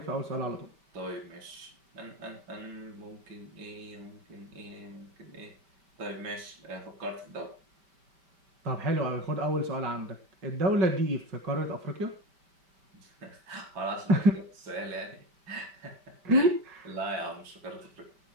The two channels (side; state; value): left; late; 5.2 ms